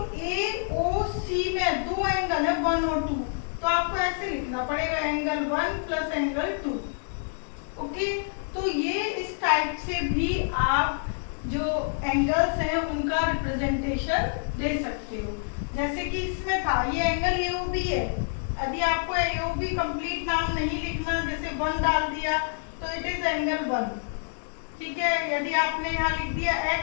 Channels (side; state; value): right; silent; 57 dB below the other